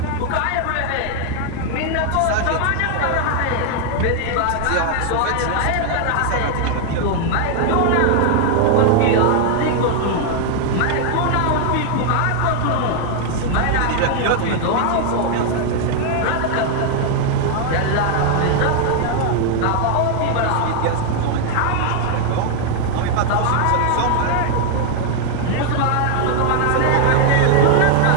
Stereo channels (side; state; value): both; different; correlation 0.00